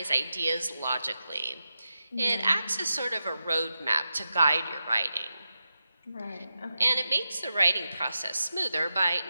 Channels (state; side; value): inverted; both; correlation -0.90